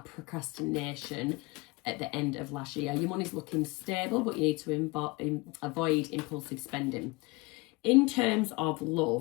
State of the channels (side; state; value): right; quieter; 24.7 dB